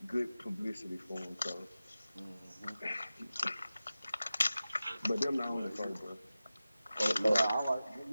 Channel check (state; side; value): inverted; both; correlation -0.95